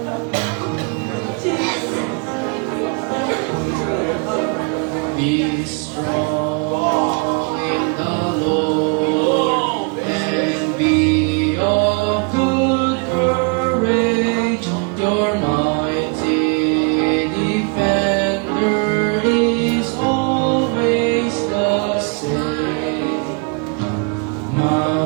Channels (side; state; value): left; quieter; 35.1 dB